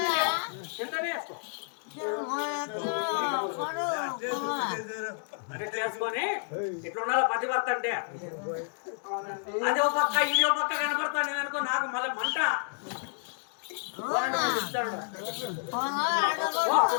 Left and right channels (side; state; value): right; silent; digital silence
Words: కిందనే వేసుకో. ఇట్లా వేసుకొని ఇట్లా ఉండాలి పతివర్త అంటే. అది ఒక పక్క ఇది ఒక పక్క కనపడతాను నేను అనుకో, నాకు మళ్ళీ మంట.